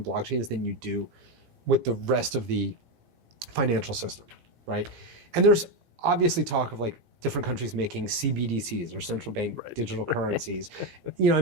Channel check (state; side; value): late; left; 17 ms